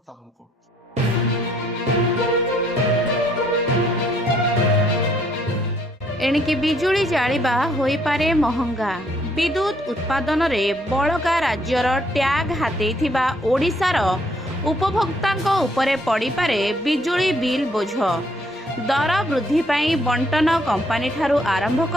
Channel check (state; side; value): normal; both; correlation 0.67